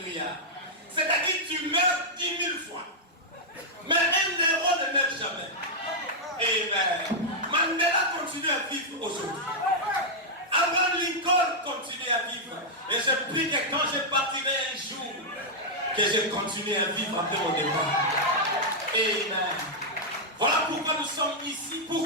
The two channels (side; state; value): both; normal; correlation -0.05